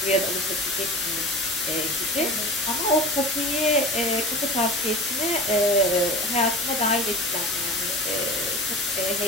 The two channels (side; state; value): both; normal; correlation 0.34